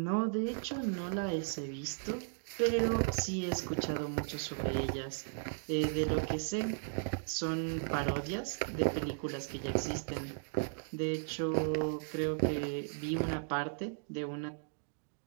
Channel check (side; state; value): left; silent; digital silence